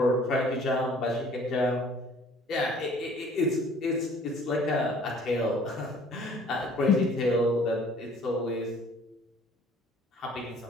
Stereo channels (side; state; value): both; normal; correlation 0.54